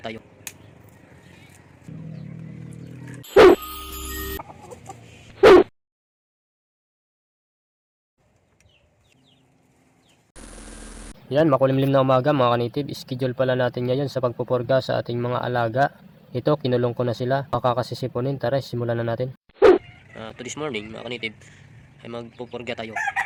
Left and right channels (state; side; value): identical; both; correlation 1.00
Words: Yan, makulimlim na umaga mga kanitib. Schedule pala natin ngayon sa pagpupurga sa ating mga alaga. Ito, kinulong ko na sila. Makakasisipunin. Tara, simulan na natin. To this morning mga kanitib ay magpupurga tayo